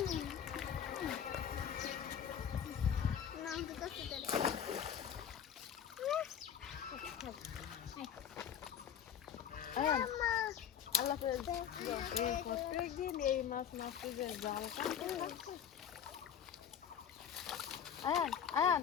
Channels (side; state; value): right; quieter; 8.7 dB